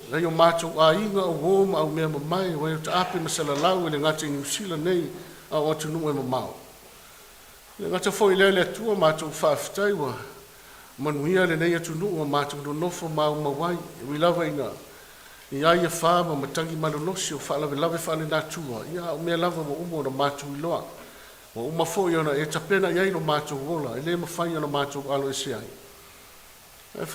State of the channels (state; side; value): identical; both; correlation 1.00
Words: na yo mātou a inga o wōma au mea mamai wa yo ta ape masala lau e le ngata i New Zealand nei a o atunu e mamau. Le ngata fōi le le atua mātou whaafitai wa manuia le nei atunu o mātou no nofo mau mawai e wilawa ina. Ia ia whāma matangi manunosi o whaalawe lawe whaale nātua. Ia o mea lava wa umo na mātou i loa. Wa uma fōi ona e tapena iai no mātou wola. E le mawhai ona mātou alo e se ai. E